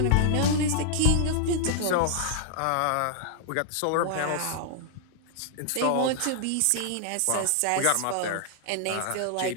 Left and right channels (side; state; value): both; different; correlation -0.01